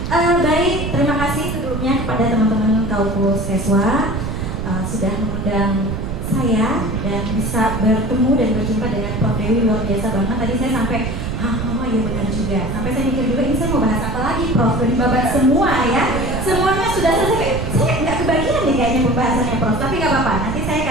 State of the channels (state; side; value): noise; right; rumble, 4 dB below the sound